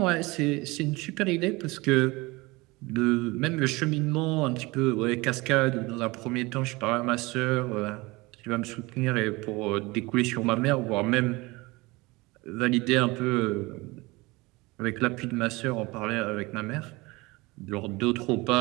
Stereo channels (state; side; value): quieter; left; 23.1 dB